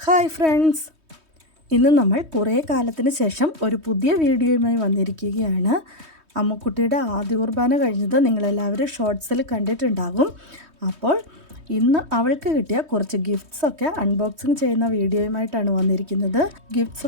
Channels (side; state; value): left; late; 3.2 ms